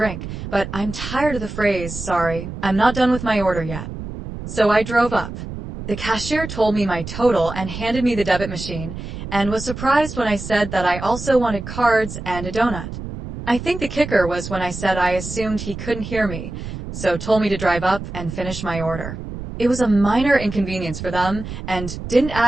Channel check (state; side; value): noise; right; rumble, 9 dB below the sound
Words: but I'm tired of the phrase, "Sorry, I'm not done with my order yet." So I drove up. The cashier told me my total and handed me the debit machine, and was surprised when I said that I also wanted cards and a donut. I think the kicker was when I said I assumed he couldn't hear me, so told me to drive up and finish my order. It was a minor inconvenience for them, and didn't